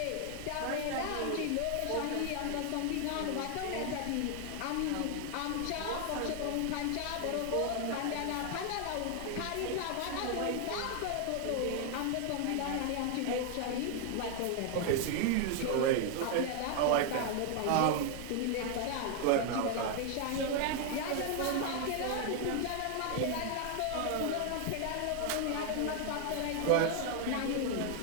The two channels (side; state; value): both; different; correlation 0.00